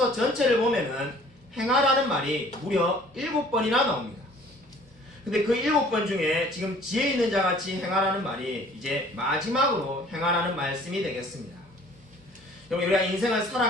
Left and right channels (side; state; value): both; normal; correlation 0.53